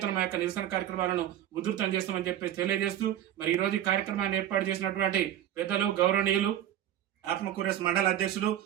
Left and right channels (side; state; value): left; quieter; 11.5 dB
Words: మా యొక్క నిరసన కార్యక్రమాలను ఉధృతం చేస్తామని చెప్పేసి తెలియజేస్తూ ఈ రోజు ఈ కార్యక్రమాన్ని ఏర్పాటు చేసినటువంటి పెద్దలు, గౌరవనీయులు ఆత్మకూరేస్ మండల అధ్యక్షులు